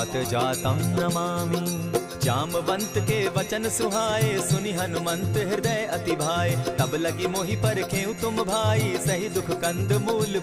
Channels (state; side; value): identical; both; correlation 1.00